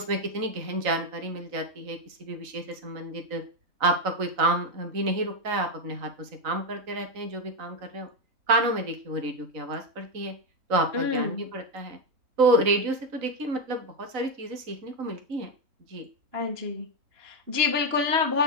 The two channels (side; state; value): left; late; 3.9 ms